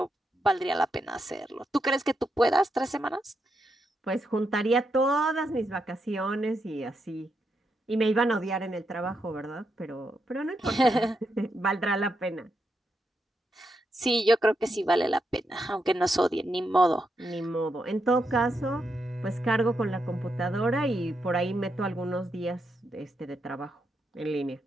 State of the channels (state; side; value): normal; both; correlation 0.83